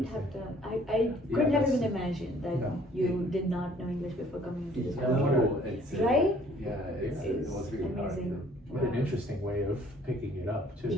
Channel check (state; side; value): normal; both; correlation 0.57